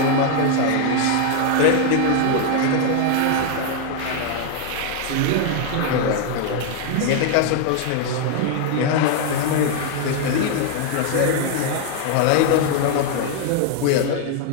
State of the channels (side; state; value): both; different; correlation 0.00